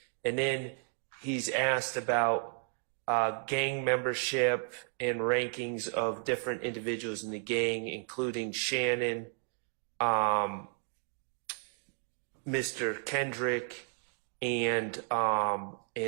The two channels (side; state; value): left; silent; 56 dB below the other